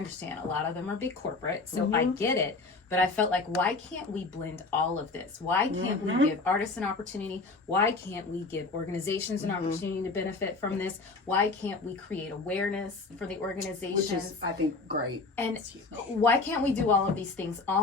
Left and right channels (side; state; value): right; quieter; 3.8 dB